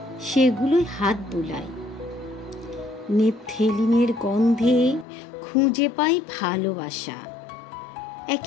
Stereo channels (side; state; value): right; drops out; at 5.1 s